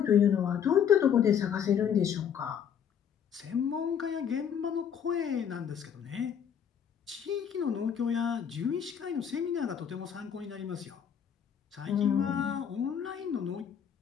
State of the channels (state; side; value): quieter; right; 8.2 dB